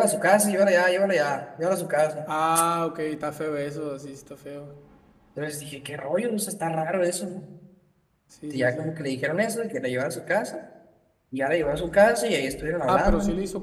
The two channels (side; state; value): both; identical; correlation 1.00